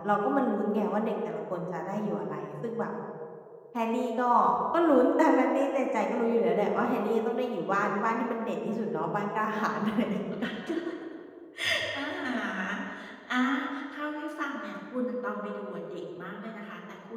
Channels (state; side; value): identical; both; correlation 1.00